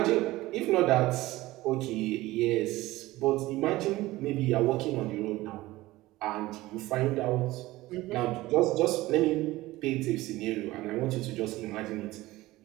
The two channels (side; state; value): left; quieter; 18.2 dB